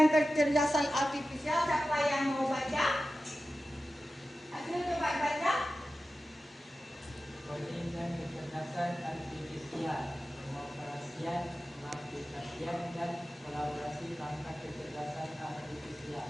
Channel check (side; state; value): both; normal; correlation 0.94